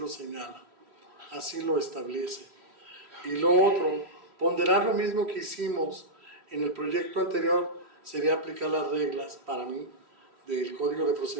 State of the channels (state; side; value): late; left; 3.1 ms